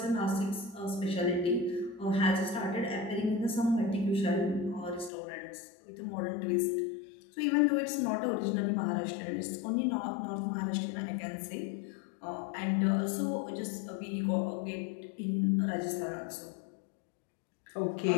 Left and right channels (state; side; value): drops out; right; at 5.1 s